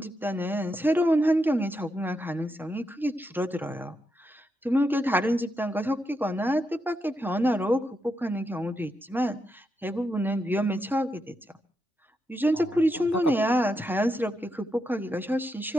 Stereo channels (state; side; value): normal; both; correlation 0.83